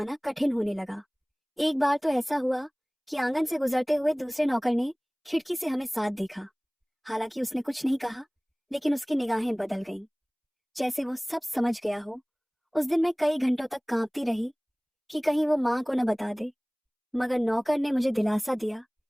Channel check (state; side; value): identical; both; correlation 1.00